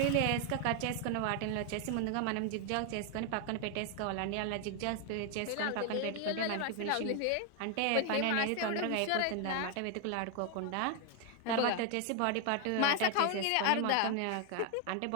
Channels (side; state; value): both; different; correlation 0.00